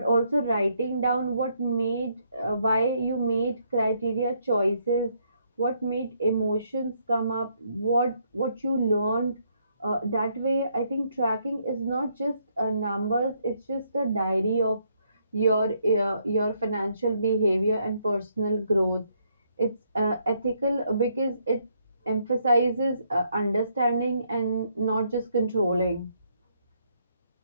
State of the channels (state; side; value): inverted; both; correlation -0.72